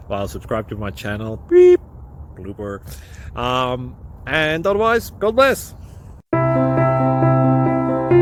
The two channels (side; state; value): both; identical; correlation 1.00